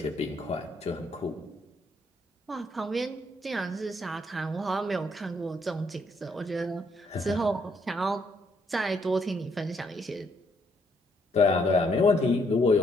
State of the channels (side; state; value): both; normal; correlation 0.71